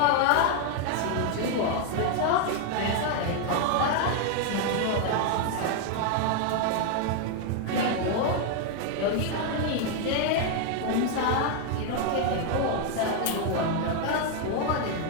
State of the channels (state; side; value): different; both; correlation 0.00